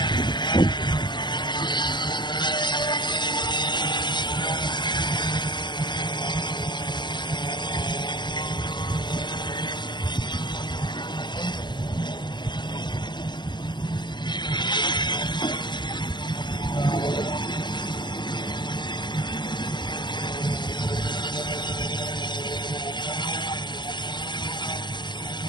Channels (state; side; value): late; right; 0.22 ms